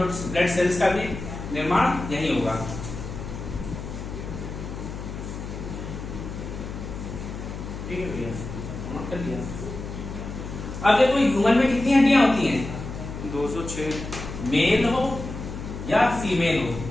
ब्लड सेल्स का भी निर्माण यही होगा। ठीक है भैया, नोट कर लिया। अब देखो ह्यूमन में कितनी हड्डियां होती हैं, 206। मेल हो या फीमेल हो,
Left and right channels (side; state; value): left; noise; hum, 8 dB below the sound